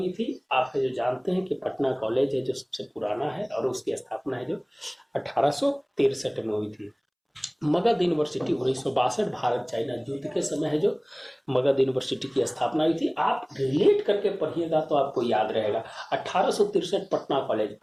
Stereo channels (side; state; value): both; identical; correlation 1.00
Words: थी। आप है जो जानते हैं कि पटना कॉलेज है जो सबसे पुराना है और उसकी स्थापना है जो 1863 में हुई थी। मगध यूनिवर्सिटी 1962, भारत चाइना युद्ध के समय है जो मगध यूनिवर्सिटी की स्थापना हुई थी। आप रिलेट करके पढ़िएगा तो आपको याद रहेगा। 1863 पटना कॉलेज